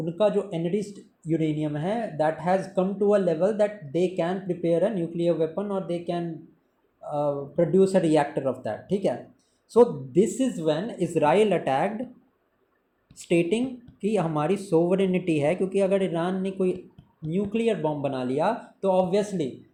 जो एनरिच्ड यूरेनियम है that has come to a level that they can prepare a nuclear weapon और they can produce a reactor of that. ठीक है. So this is when Israel attacked, stating कि हमारी sovereignty है, क्योंकि अगर ईरान ने कोई न्यूक्लियर बॉम्ब बना लिया तो obviously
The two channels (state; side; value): identical; both; correlation 1.00